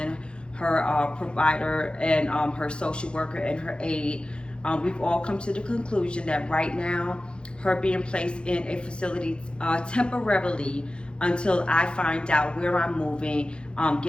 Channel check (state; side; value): late; right; 0.054 ms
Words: her provider, and her social worker and her aide, we've all come to the conclusion that right now, her being placed in a facility temporarily until I find out where I'm moving,